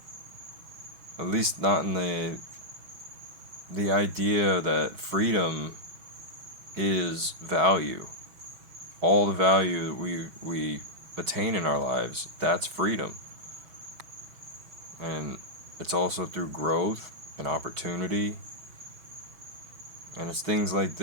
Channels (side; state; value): left; late; 6.2 ms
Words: At least not in the idea that freedom is value. All the value that we attain in our lives, that's freedom. And it's also through growth and opportunity. And it's things like